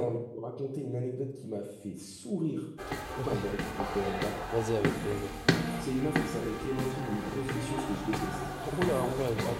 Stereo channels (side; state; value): both; identical; correlation 1.00